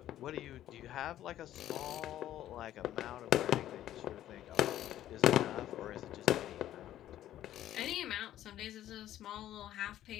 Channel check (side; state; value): right; quieter; 12.6 dB